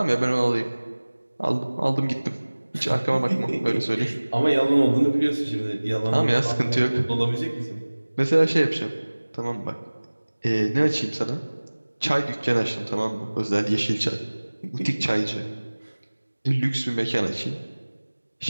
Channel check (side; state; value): both; inverted; correlation -1.00